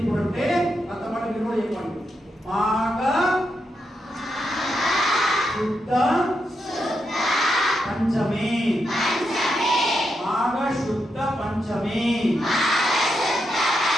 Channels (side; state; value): both; normal; correlation 0.84